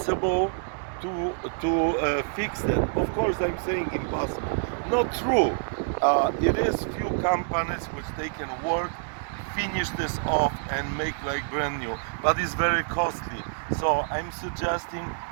to fix that. Of course, I'm saying impossible. Not true. It is few companies which they can work, finish this off and make like brand new, but it's very costly. So I'm suggesting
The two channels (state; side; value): silent; left; 60 dB below the other